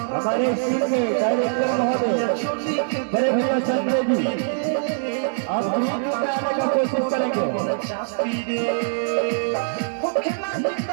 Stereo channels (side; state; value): left; silent; digital silence